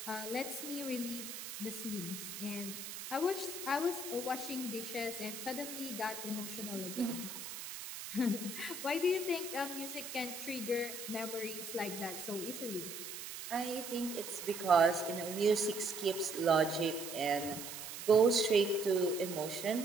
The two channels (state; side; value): noise; right; hiss, 8 dB below the sound